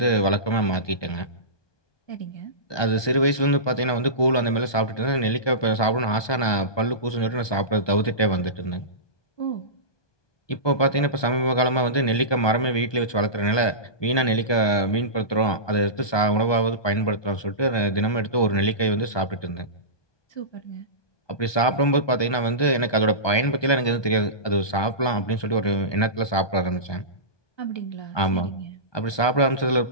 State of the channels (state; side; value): late; right; 1.2 ms